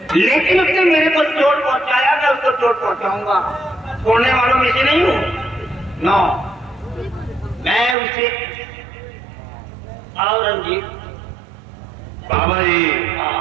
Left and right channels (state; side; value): drops out; left; at 8.0 s